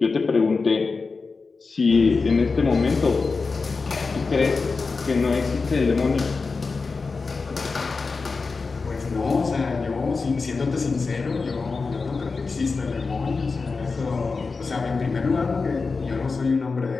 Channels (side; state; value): right; quieter; 4.4 dB